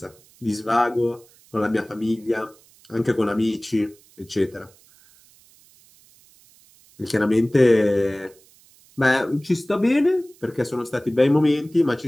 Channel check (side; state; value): right; noise; hiss, 28 dB below the sound